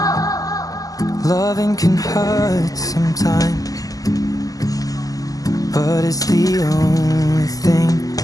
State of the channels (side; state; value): right; late; 0.17 ms